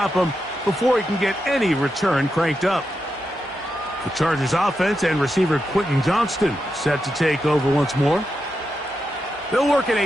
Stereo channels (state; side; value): normal; both; correlation 0.87